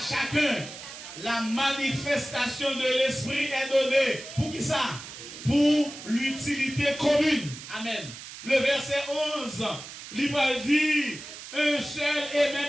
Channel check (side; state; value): right; noise; hiss, 13 dB below the sound